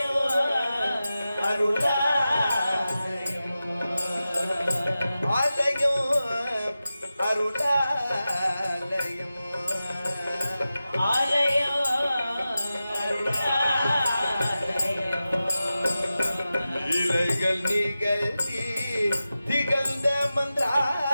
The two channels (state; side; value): inverted; both; correlation -0.93